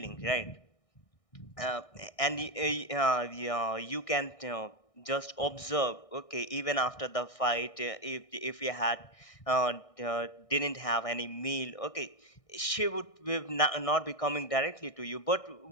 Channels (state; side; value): late; right; 1.6 ms